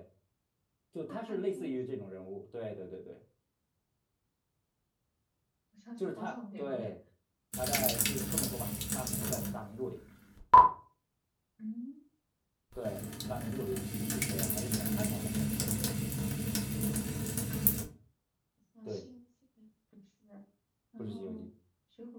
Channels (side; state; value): both; identical; correlation 1.00